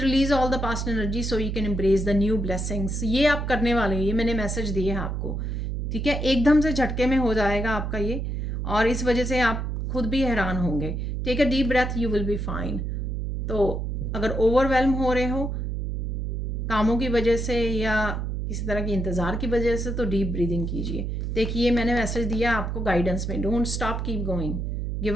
all the past energy so you can embrace the new blessings. ये आप करने वाले हैं, ये मैंने मैसेज दिए हैं आपको, ठीक है। एकदम से झटके में हो जाएगा आपका ये, और इस वजह से आप खुद भी हैरान होंगे। Take a deep breath, you will be fine. तो अगर ओवरवेलम हो रहे हो कामों की वजह से या किसी तरह की इंतज़ार की वजह से, तो डीप ब्रीदिंग कीजिए। देखिए, मैंने मैसेज दिया आपको गाइडेंस में, don't stop, keep going.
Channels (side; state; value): right; noise; hum, 2 dB below the sound